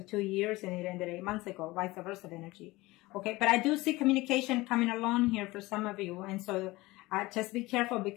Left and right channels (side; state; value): right; quieter; 20.5 dB